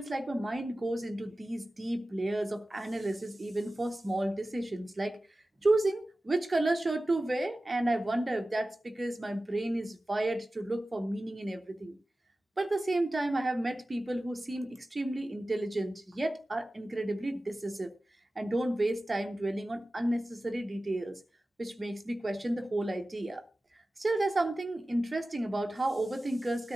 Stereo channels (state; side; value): normal; both; correlation 0.96